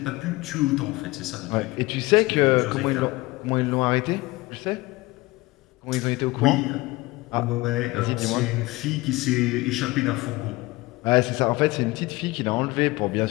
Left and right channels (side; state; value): right; quieter; 21.2 dB